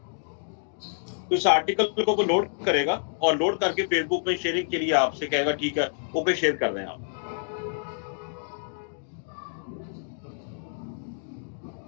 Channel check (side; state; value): right; silent; digital silence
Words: तो इस आर्टिकल को वो लोड करेगा और लोड करके फेसबुक में शेयरिंग के लिए आपसे कहेगा ठीक है ओके शेयर कर रहे हैं आप।